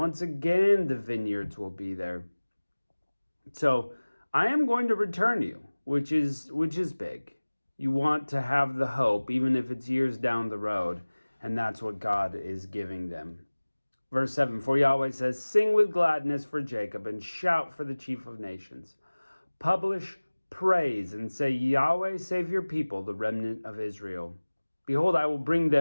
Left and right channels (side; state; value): both; inverted; correlation -1.00